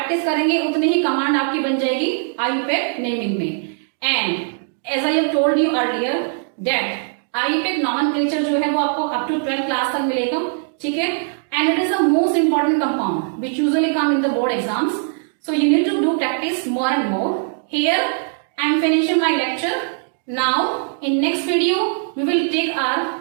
करेंगे उतने ही command आपकी बन जाएगी IUPAC naming में। And as I have told you earlier that IUPAC nomenclature जो है वो आपको अप टू 12th क्लास तक मिलेगा, ठीक है। And it is the most important compound which usually come in the board exams, so you need to do practice more and more. Here I am finishing my lecture. Now in next video we will take our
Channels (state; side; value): silent; left; 66 dB below the other